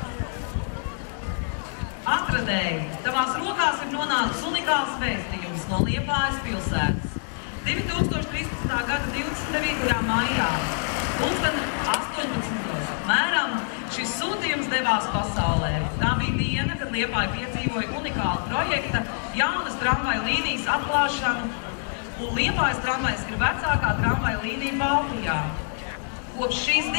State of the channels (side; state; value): right; silent; digital silence